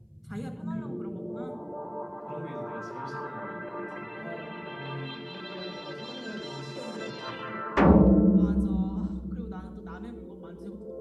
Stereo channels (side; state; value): both; identical; correlation 1.00